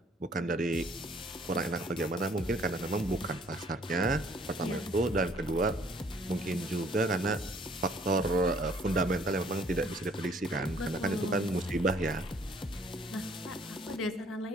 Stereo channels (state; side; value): normal; both; correlation 0.60